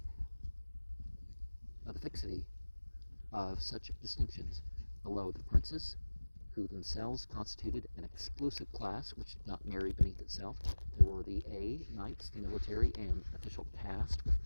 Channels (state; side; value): inverted; both; correlation -1.00